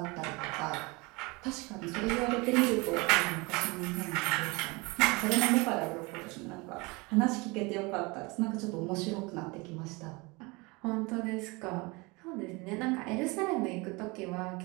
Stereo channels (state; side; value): quieter; left; 25.9 dB